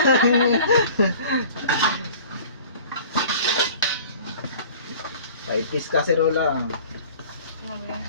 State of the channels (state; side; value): inverted; both; correlation -0.45